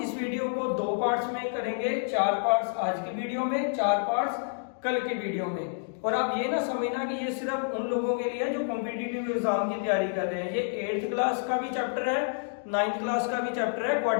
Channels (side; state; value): right; silent; digital silence